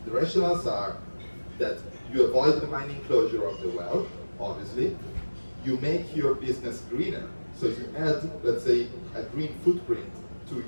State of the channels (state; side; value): inverted; both; correlation -1.00